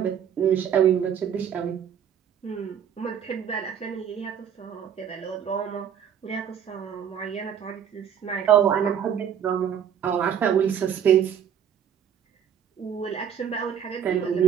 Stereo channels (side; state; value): left; quieter; 8.6 dB